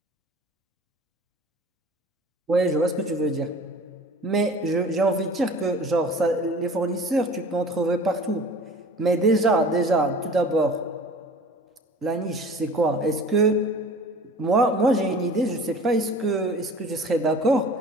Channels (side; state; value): both; normal; correlation 0.44